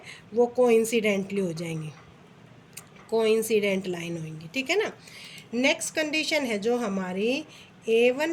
वो कोइंसिडेंटली हो जाएंगी, कोइंसिडेंट लाइन होंगी। ठीक है ना। नेक्स्ट कंडीशन है जो हमारी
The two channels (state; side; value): identical; both; correlation 1.00